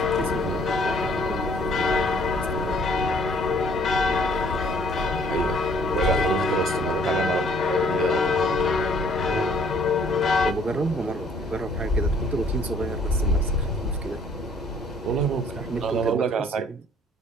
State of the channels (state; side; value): normal; both; correlation 0.60